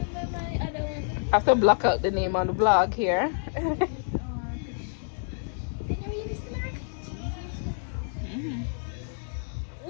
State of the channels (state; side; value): silent; right; digital silence